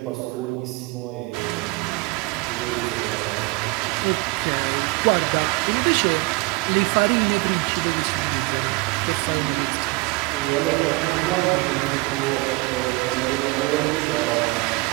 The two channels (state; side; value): quieter; left; 25.5 dB